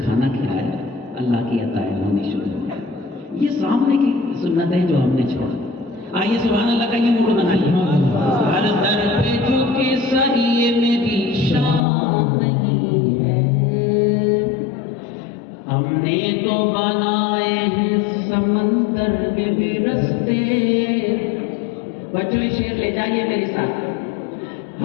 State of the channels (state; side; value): drops out; right; at 11.8 s